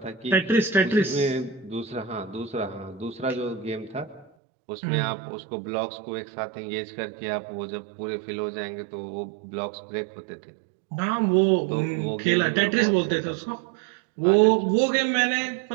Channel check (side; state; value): left; drops out; at 4.3 s